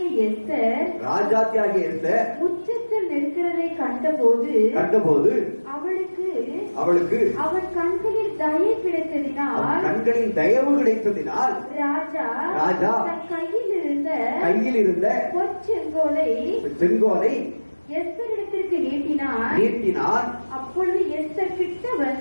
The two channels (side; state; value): both; inverted; correlation -1.00